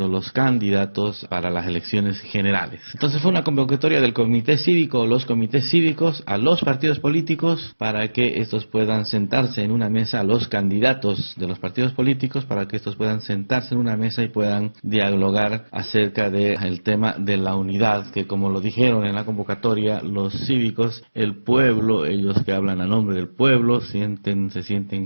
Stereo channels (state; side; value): inverted; both; correlation -1.00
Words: los candidatos para las elecciones generales. Entonces fue una convocatoria del comité cívico, los comités cívicos, a los partidos políticos, para que estos puedan sentarse en una mesa, a los candidatos de los partidos políticos, para que estos puedan sentarse en una mesa y puedan dialogar acerca del tema de la unidad, que como lo dijeron en la convocatoria, los cívicos, el pueblo, ellos que hablan a nombre del pueblo, se